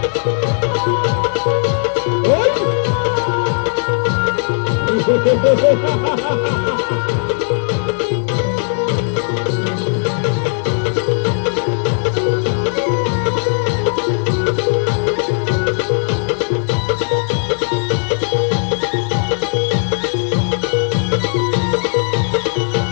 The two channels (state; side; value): silent; right; 61 dB below the other